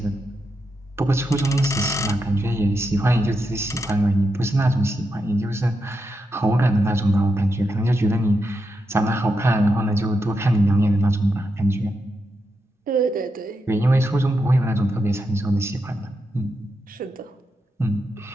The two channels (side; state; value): both; normal; correlation 0.85